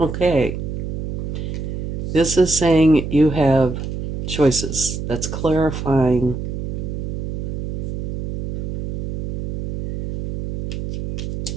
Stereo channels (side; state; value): right; noise; hum, 4 dB below the sound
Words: This is saying you have choices. That's clarifying